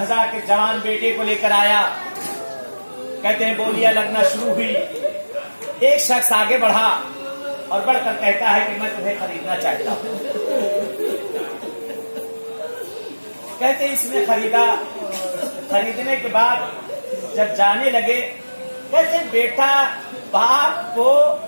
کے جوان بیٹے کو لے کر آیا. کہتے ہیں بولیاں لگنا شروع ہوئی. ایک شخص آگے بڑھا اور بڑھ کر کہتا ہے کہ میں تمہیں خریدنا چاہتا ہوں. کہتے اس نے خریدا. خریدنے کے بعد جب جانے لگے, کہتے بیٹا باپ کو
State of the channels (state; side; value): inverted; both; correlation -1.00